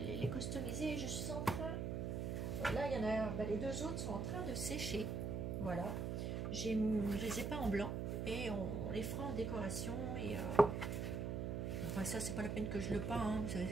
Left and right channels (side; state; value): right; noise; hum, 1 dB below the sound